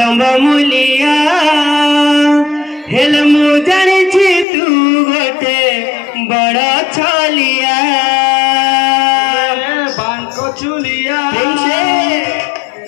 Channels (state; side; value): drops out; right; at 4.5 s